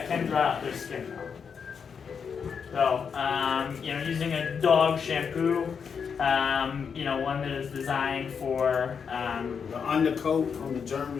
can dry out their skin. So, using a dog shampoo, one that is designed for. The undercoat on the German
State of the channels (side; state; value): right; quieter; 6.4 dB